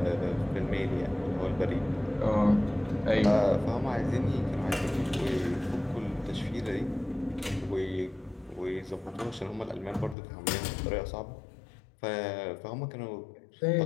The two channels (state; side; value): drops out; right; at 10.2 s